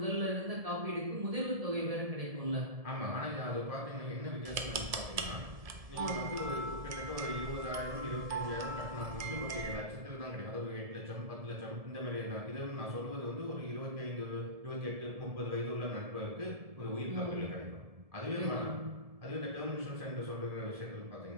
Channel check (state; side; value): late; left; 1.7 ms